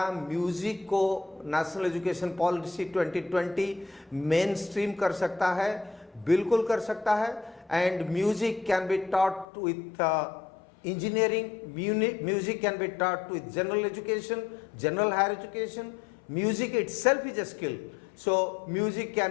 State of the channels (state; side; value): drops out; right; at 9.5 s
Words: म्यूजिक को national education policy 2020 main stream कर सकता है? बिल्कुल कर सकता है. And music can be taught with engineering, music can be taught with general education, general higher education. Music itself is a skill. So music